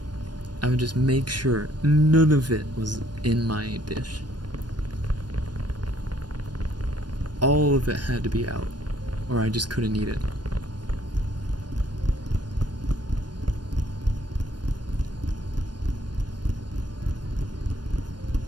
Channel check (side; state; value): left; late; 0.70 ms